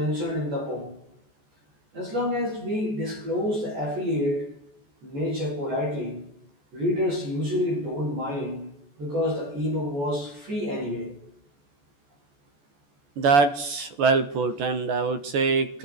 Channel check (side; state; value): left; late; 14 ms